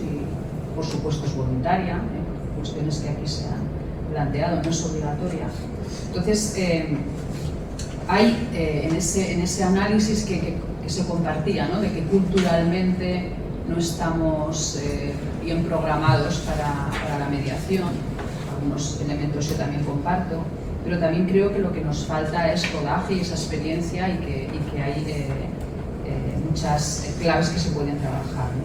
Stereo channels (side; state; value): both; identical; correlation 1.00